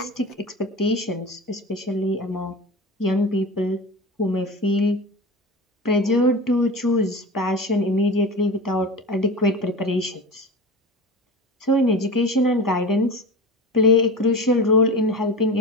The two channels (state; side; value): normal; both; correlation 0.29